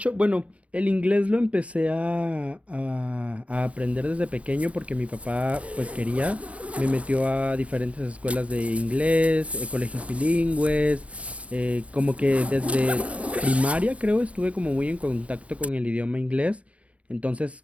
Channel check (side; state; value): left; late; 0.066 ms